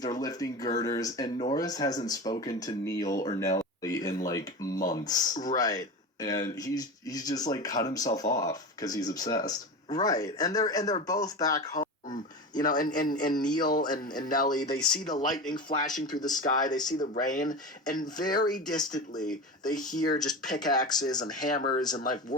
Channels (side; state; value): both; normal; correlation 0.26